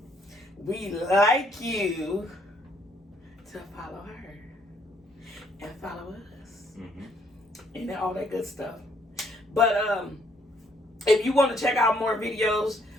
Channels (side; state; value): both; normal; correlation 0.68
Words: we like you to follow her and follow us. Mm-hmm. And all that good stuff. But if you want to check out more videos,